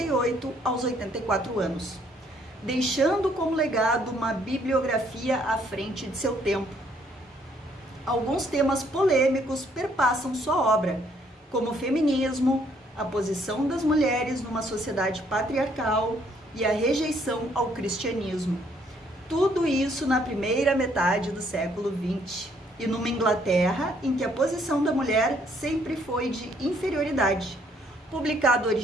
aos 84 anos, deixando como legado uma bibliografia à frente de seu tempo. Alguns temas polêmicos perpassam sua obra, como o feminismo, a posição das mulheres numa sociedade patriarcal e a rejeição ao cristianismo. Tudo isso na primeira metade do século XX, e numa Inglaterra em que a posição da mulher sempre foi de inferioridade. Publicado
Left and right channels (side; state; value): both; normal; correlation 0.67